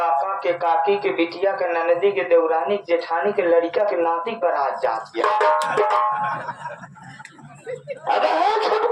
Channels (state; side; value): identical; both; correlation 1.00